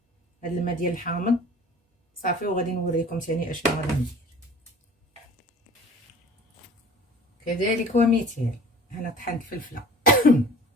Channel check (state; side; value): normal; both; correlation 0.45